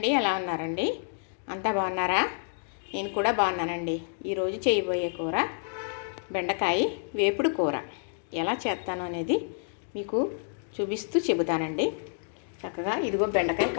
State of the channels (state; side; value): silent; right; digital silence